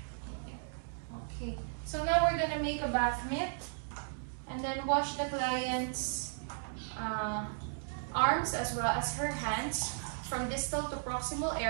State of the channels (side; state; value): left; silent; digital silence